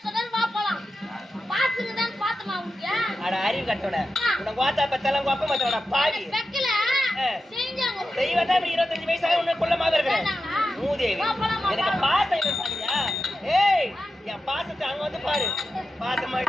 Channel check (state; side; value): normal; both; correlation 0.91